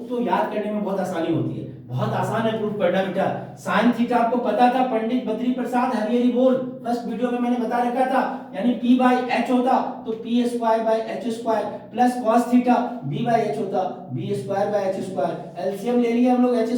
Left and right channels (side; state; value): both; identical; correlation 1.00